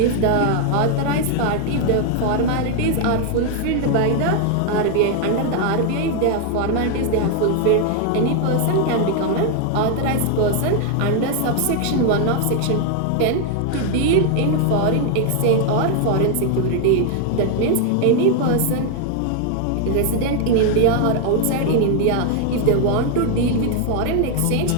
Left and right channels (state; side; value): different; both; correlation 0.00